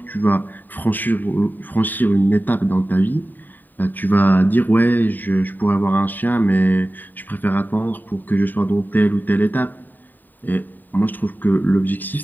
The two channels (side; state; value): right; late; 0.089 ms